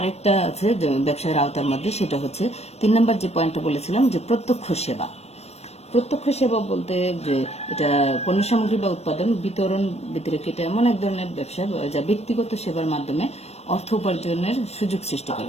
আছে ব্যবসায়ের আওতার মধ্যে, সেটা হচ্ছে 3 নম্বর যে পয়েন্টটা বলেছিলাম যে প্রত্যক্ষ সেবা। প্রত্যক্ষ সেবা বলতে যে এটা পণ্য সামগ্রী বা উৎপাদন বিতরণ বিতরক, এটা এমন এক ধরনের ব্যবসা যা ব্যক্তিগত সেবার মাধ্যমে অর্থ উপার্জনের সুযোগ সৃষ্টি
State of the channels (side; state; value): right; late; 0.31 ms